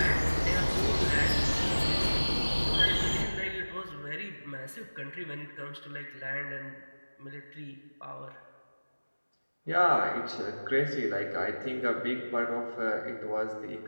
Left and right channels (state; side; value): inverted; both; correlation -1.00